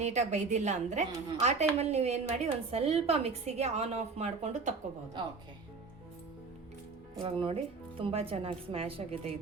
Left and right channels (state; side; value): quieter; left; 4.4 dB